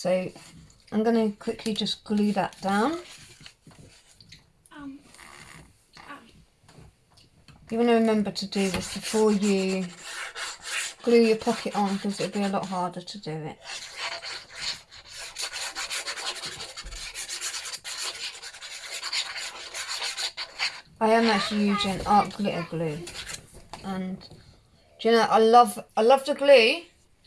I'm going to quickly just glue that down. You want to remember to do this before you glue your pocket on, because it'll be a lot harder to do it. I am actually using art glitter glue, and do you know, I love the glue,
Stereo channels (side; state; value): both; identical; correlation 1.00